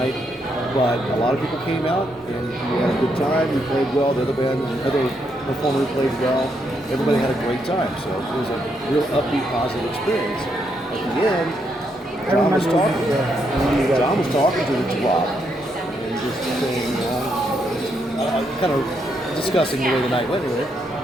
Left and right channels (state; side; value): normal; both; correlation 0.78